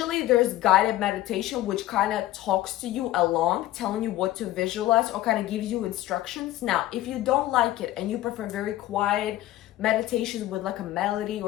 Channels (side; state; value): right; quieter; 15.0 dB